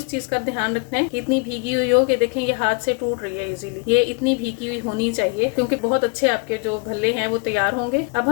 चीज का ध्यान रखना है कि इतनी भीगी हुई हो कि देखें ये हाथ से टूट रही है इजीली। ये इतनी भीगी हुई होनी चाहिए क्योंकि बहुत अच्छे आपके जो भल्ले हैं वो तैयार होंगे। अब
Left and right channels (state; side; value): quieter; right; 32.9 dB